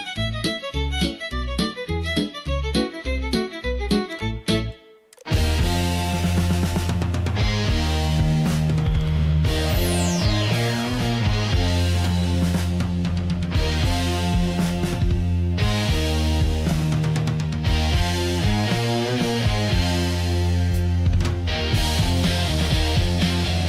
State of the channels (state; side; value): identical; both; correlation 1.00